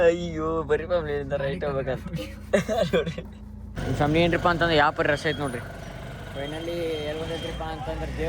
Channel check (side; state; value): both; identical; correlation 1.00